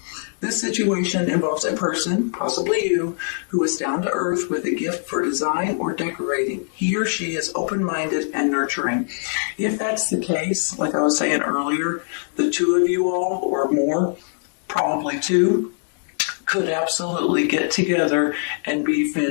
This situation involves a person, possibly you, who is down to earth with a gift for design or decorating. He or she is open-minded and nurturing. If that's the case, like I was saying earlier, the two of you all, or more, probably two, could absolutely get together and be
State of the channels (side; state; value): right; silent; 64 dB below the other